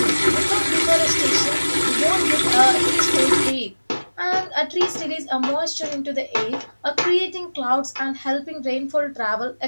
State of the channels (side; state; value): both; inverted; correlation -1.00